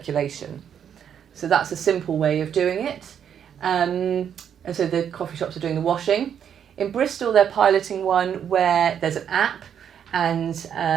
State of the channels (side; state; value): left; quieter; 8.6 dB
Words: So that's a simple way of doing it. And so the coffee shops are doing the washing. In Bristol, they're piloting one where there's an app and